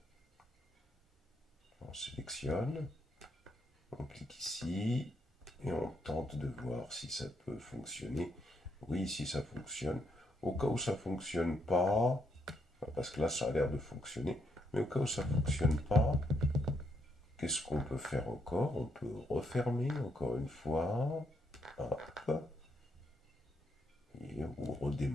On sélectionne, on clique ici et on tente de voir si ça peut fonctionner. Oui, si ça fonctionne. Au cas où ça ne fonctionne pas, parce que là ça a l'air de fonctionner, mais au cas où ça ne fonctionne pas, qu'est-ce qu'on peut faire encore? On peut refermer encore une fois. Hop. Et, ou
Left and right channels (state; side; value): normal; both; correlation 0.77